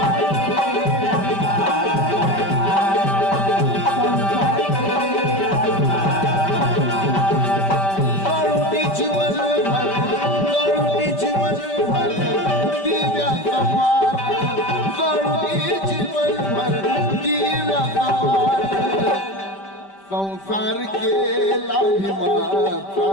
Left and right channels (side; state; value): right; late; 5.1 ms